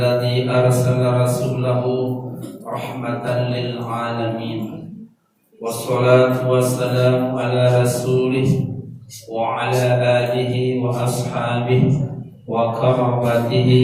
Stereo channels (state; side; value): identical; both; correlation 1.00